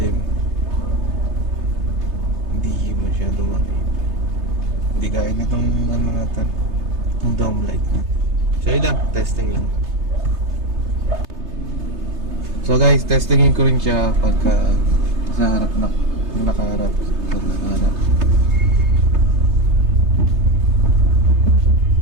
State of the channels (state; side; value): late; left; 3.3 ms